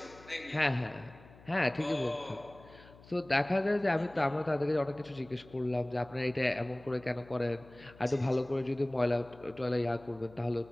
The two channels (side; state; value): left; noise; hum, 22 dB below the sound